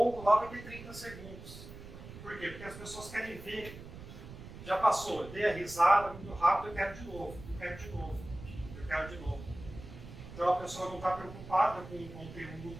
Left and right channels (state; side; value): noise; right; rumble, 14 dB below the sound